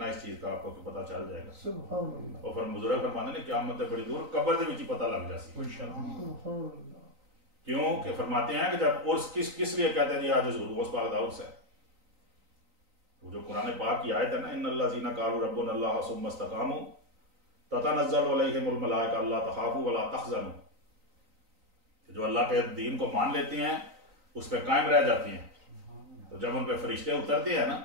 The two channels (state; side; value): late; left; 3.9 ms